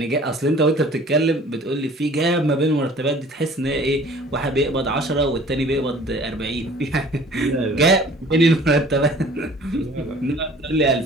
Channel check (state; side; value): normal; both; correlation 0.49